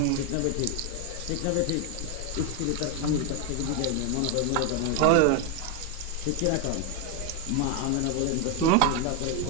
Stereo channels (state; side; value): different; both; correlation 0.01